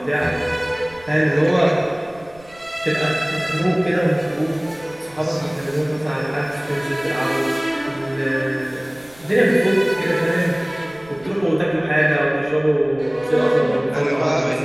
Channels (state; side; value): noise; right; rumble, 25 dB below the sound